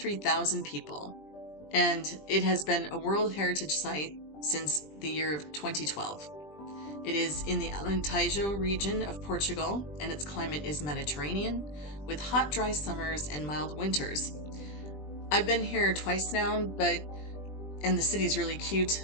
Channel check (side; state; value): right; late; 20 ms